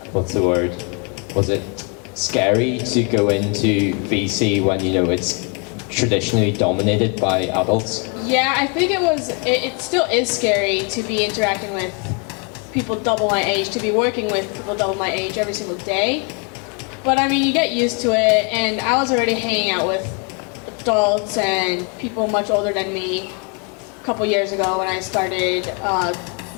what's the word, was it scary to go into VC when it's traditionally dominated by adults? Yeah, I think it still is scary to be interacting with people double my age, to be working with people double my age every single day. But I mean, you get used to it, and I was already hanging out with adults and people much older than me a couple years ago when I started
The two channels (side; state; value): right; quieter; 34.7 dB